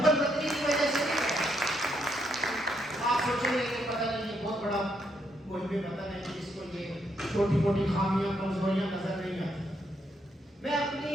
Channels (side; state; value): both; normal; correlation 0.76